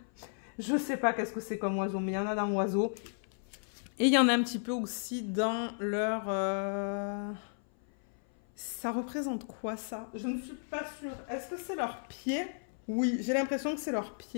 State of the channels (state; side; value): silent; right; 55 dB below the other